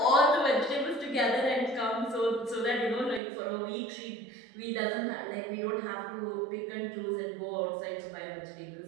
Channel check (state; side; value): drops out; left; at 3.2 s